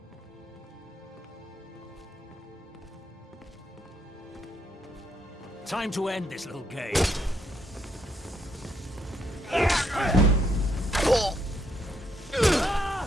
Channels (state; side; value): normal; both; correlation 0.74